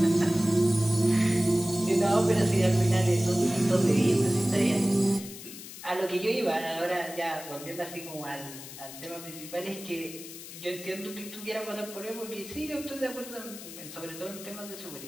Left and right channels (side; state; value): left; noise; hiss, 13 dB below the sound